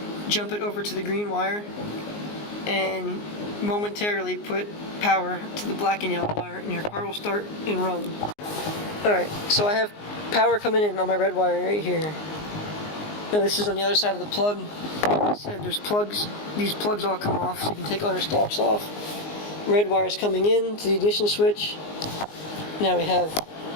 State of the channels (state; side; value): late; right; 19 ms